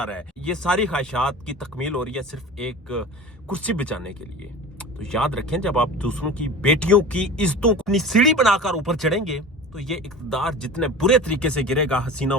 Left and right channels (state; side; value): normal; both; correlation 0.35